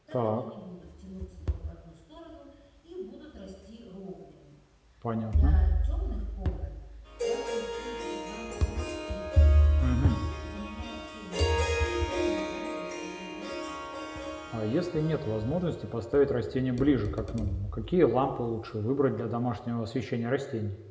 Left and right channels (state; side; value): identical; both; correlation 1.00